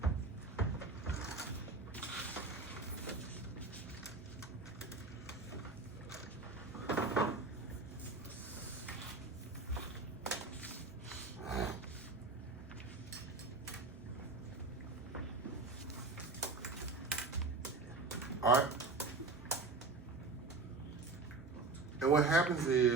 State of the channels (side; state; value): left; quieter; 3.8 dB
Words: All right. And what happens